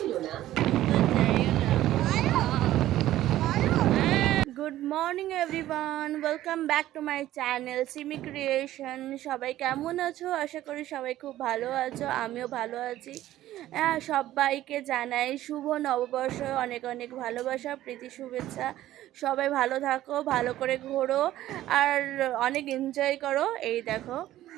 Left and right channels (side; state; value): left; quieter; 14.1 dB